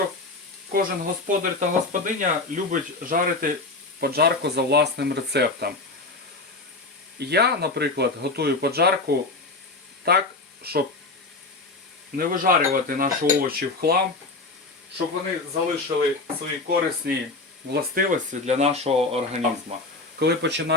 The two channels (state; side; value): quieter; right; 3.4 dB